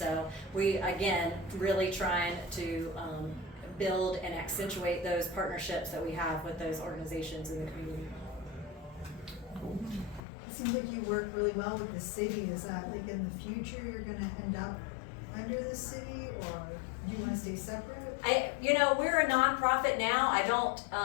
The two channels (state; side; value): drops out; right; at 10.2 s